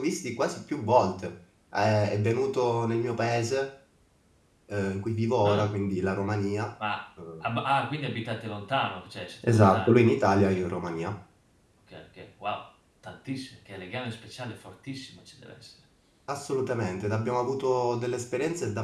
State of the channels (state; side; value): identical; both; correlation 1.00